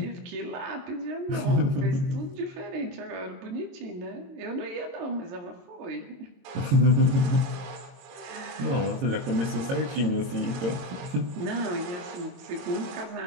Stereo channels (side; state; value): left; late; 22 ms